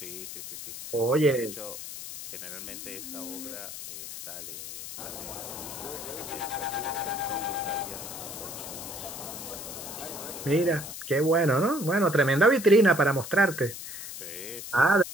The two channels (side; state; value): left; noise; hiss, 10 dB below the sound